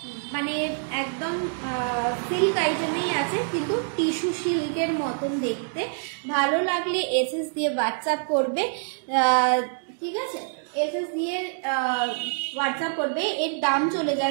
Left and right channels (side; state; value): left; silent; digital silence